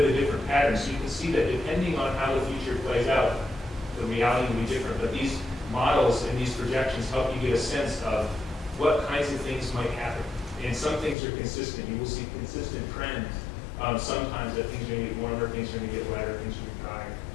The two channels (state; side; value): drops out; right; at 11.2 s